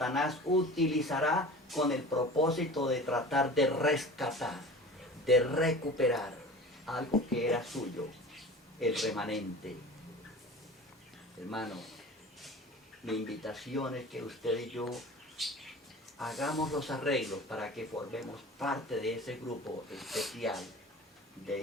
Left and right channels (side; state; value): both; normal; correlation 0.38